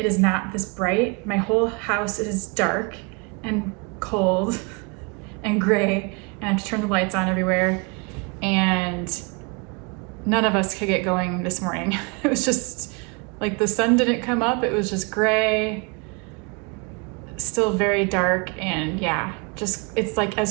is not this bright. My whole house is dark and cold and gray, and I have to turn the lights on everywhere, and none of us could get going this morning. It was just like the sun didn't come up. It was just gray, still very dark, and yeah, just it's like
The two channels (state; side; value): quieter; left; 31.2 dB